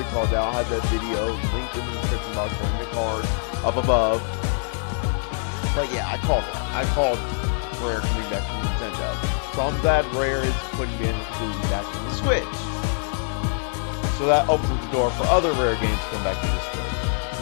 call that. I'll have that video linked in the description box or in the card up above. But yeah, I called that. I called Rare coming back from Nintendo. So I'm glad Rare is putting Banjo-Kazooie back in the Switch. So that opens up the door for other Rare games to come back to the Switch.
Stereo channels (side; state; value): right; silent; 58 dB below the other